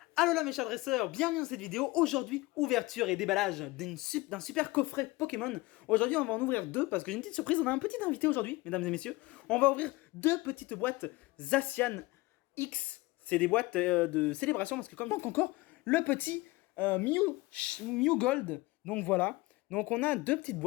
Allo là mes chers dresseurs, bienvenue dans cette vidéo. Aujourd'hui, ouverture et déballage d'un super coffret Pokémon. Aujourd'hui, on va en ouvrir deux parce que j'ai une petite surprise. On a un petit invité aujourd'hui, mesdames et messieurs. On va ouvrir deux petites boîtes Zacian X. C'est des boîtes de célébration parce que comme donc encore le petit Mew Gold. Donc voilà. Donc on a deux petites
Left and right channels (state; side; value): quieter; right; 21.6 dB